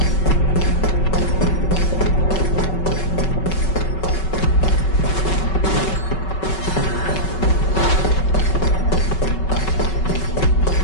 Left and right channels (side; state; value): right; late; 5.3 ms